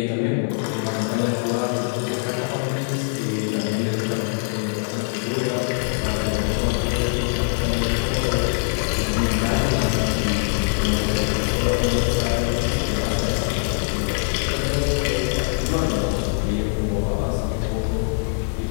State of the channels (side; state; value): right; silent; digital silence